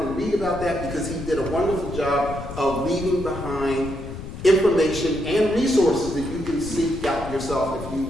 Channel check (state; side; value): noise; left; rumble, 10 dB below the sound